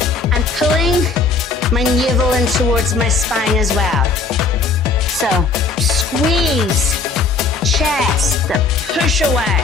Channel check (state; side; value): quieter; right; 4.4 dB